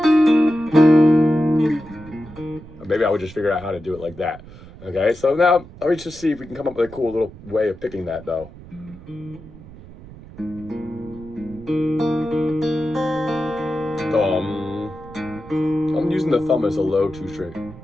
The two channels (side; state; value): right; noise; rumble, 18 dB below the sound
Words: Maybe I would just figure out how to do it like that. Okay, so now let me just see if we can come up with a cool little way of picking that though. Thumb. I'm using the thumb as a low 2 string.